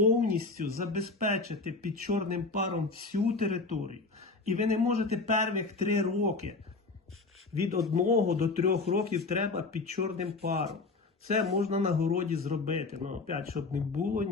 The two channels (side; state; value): right; quieter; 3.8 dB